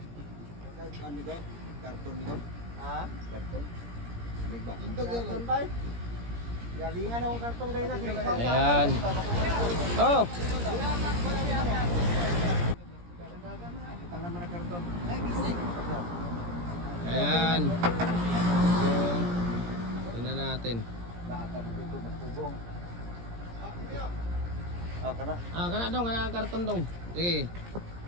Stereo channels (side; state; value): left; late; 17 ms